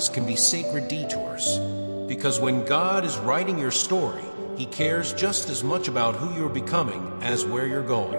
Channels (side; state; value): both; inverted; correlation -1.00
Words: can be sacred detours. Because when God is writing your story, He cares just as much about who you're becoming as where you're